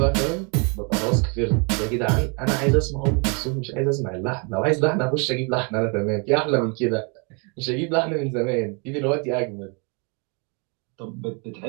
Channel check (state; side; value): quieter; left; 34.1 dB